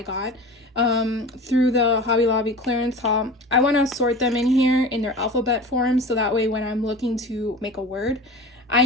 got, through the Hobby Lobby clearance haul. I want to sort them in here in their alphabet form so that way when I'm looking to make a word, I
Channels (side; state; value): both; normal; correlation 0.35